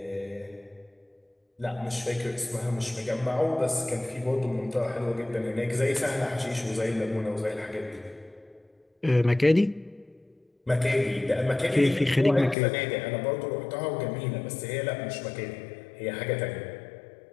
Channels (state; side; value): drops out; right; at 12.6 s